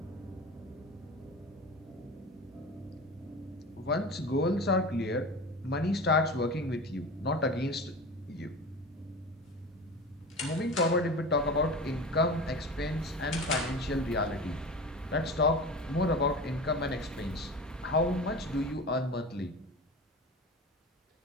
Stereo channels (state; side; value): normal; both; correlation 0.31